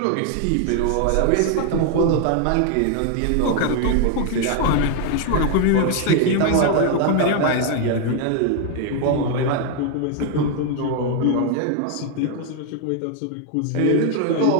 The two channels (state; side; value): different; both; correlation 0.00